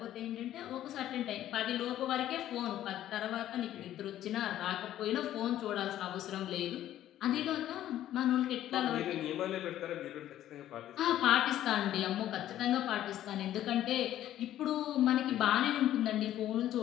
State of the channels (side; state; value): right; quieter; 12.5 dB